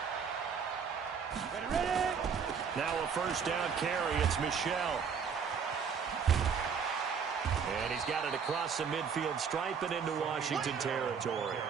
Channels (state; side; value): quieter; left; 6.5 dB